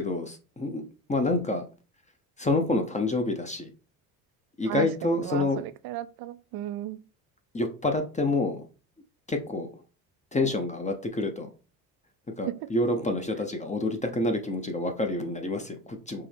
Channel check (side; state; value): both; normal; correlation 0.34